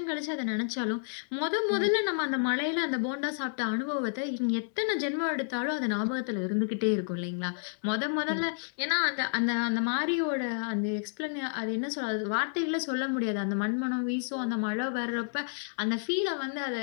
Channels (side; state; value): right; silent; 58 dB below the other